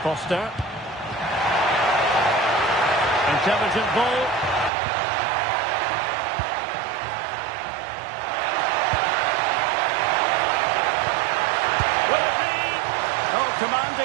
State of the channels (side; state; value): left; drops out; at 4.7 s